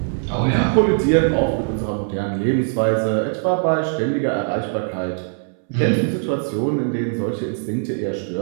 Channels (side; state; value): left; silent; 65 dB below the other